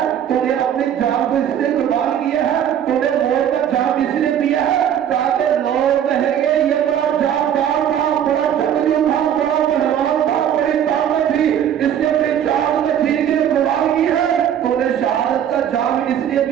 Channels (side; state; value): left; quieter; 9.6 dB